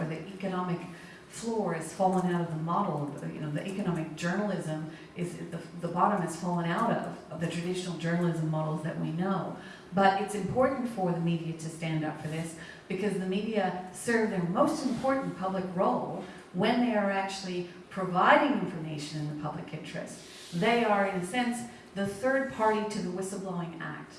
the economic floor has fallen out of the model, the economic journalism is, the bottom has fallen out of the traditional journalism models that we know. But it's important for the media to stand up for this because the media serve their most important public role when they are actually providing information in the public interest. They are, in a sense, the third party to the Whistleblowing Act.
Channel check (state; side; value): identical; both; correlation 1.00